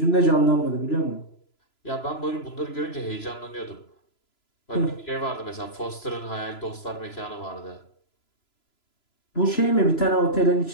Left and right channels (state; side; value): late; right; 3.0 ms